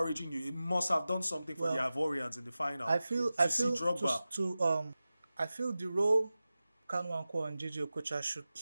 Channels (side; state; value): both; inverted; correlation -0.95